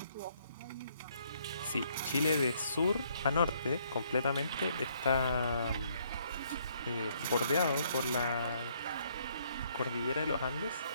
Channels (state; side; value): inverted; both; correlation -0.68